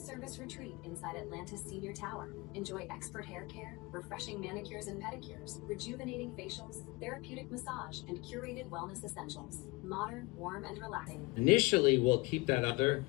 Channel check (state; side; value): quieter; right; 24.4 dB